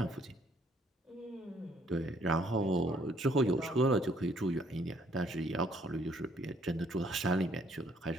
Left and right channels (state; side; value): normal; both; correlation 0.65